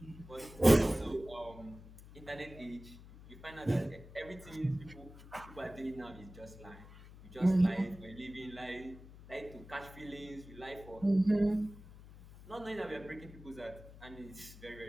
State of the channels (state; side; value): noise; left; hum, 17 dB below the sound